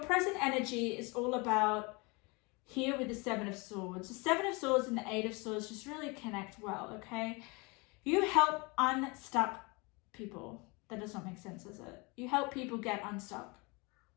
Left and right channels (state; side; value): quieter; right; 28.0 dB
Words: present energy is all about here with the Seven of Swords. The Seven of Swords and the Eight of Swords just really connect well, okay? You help unstuck people. That does not make sense, does it? You help people get unstuck.